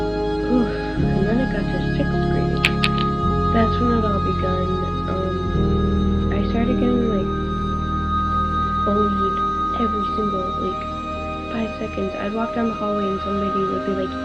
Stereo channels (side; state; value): both; identical; correlation 1.00